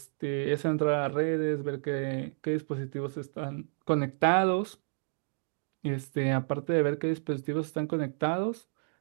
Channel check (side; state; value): left; silent; digital silence